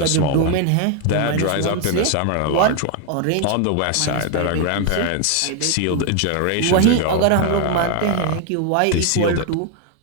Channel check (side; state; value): both; different; correlation 0.01